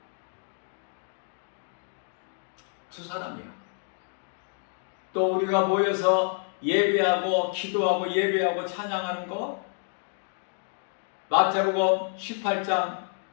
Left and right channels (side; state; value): right; silent; 59 dB below the other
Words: 두 사람이야. 또 우리가 모여서 예배하고 기도하고 예배하고 찬양하는 거 마태복음 18장